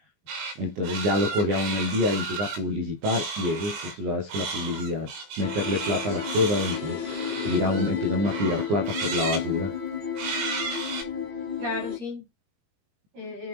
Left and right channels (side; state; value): left; late; 20 ms